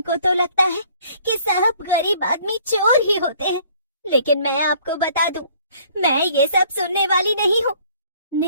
तो लगता है कि सब गरीब आदमी चोर ही होते हैं। लेकिन मैं आपको बता दूं, मैं ये सब सुनने वाली नहीं हूँ।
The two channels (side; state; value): both; inverted; correlation -0.58